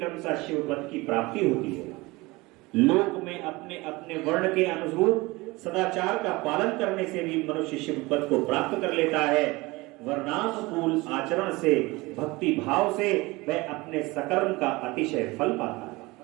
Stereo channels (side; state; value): left; quieter; 22.5 dB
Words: शिव पद की प्राप्ति होती है। लोक में अपने अपने वर्ण के अनुरूप सदाचार का पालन करने से भी मनुष्य शिव पद को प्राप्त कर लेता है। वर्णानुकूल आचरण से, भक्ति भाव से वह अपने सकर्म का अतिशय फल पाता है।